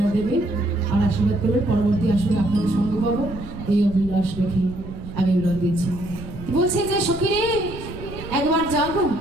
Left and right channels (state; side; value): noise; right; rumble, 13 dB below the sound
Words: দেবেন আর আশীর্বাদ করবেন। পরবর্তী আসলে আপনাদের সঙ্গে পাবো, এই অভিলাষ রেখে আমি বিরোধ দিচ্ছি। বলছে যে সখী রে, একবার যাবো,